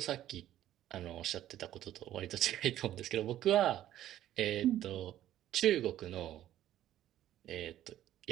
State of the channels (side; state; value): left; quieter; 12.6 dB